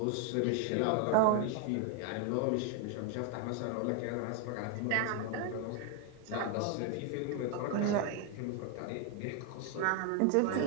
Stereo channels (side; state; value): both; different; correlation 0.01